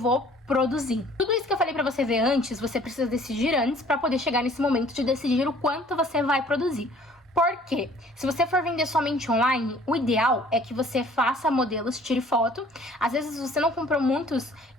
produzir. Tudo isso que eu falei pra você ver antes, você precisa decidir antes pra poder chegar nesse momento de decidir o quanto você vai produzir. Por quê? Se você for vender somente online, o ideal é que você faça modelos, tire foto. Às vezes você não comprou muitos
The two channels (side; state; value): both; normal; correlation 0.54